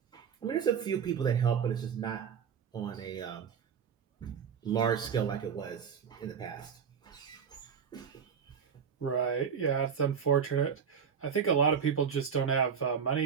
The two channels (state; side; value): quieter; left; 7.1 dB